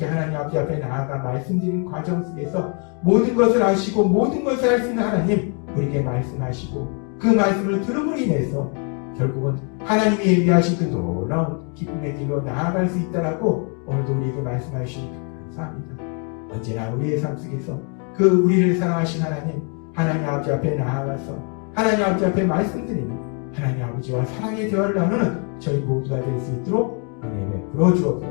하나님 아버지 앞에 나아가 말씀드리는 과정 속에서 모든 것을 아시고 모든 것을 할 수 있는 하나님, 우리에게 말씀하시고 그 말씀을 들음으로 인해서 결국은 하나님이 예비하신 그 놀라운 기쁨의 길로 나아갈 수 있다라고 오늘도 우리에게 말씀하시니 감사합니다. 언제나 우리의 삶 속에서 그 우리를 사랑하신 하나님 아버지 앞에 나아가서 하나님 아버지 앞에 말씀드리는 하나님 아버지와 사랑의 대화를 나누는 저희 모두가 될 수 있도록 은혜 베풀어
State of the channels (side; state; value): right; quieter; 38.8 dB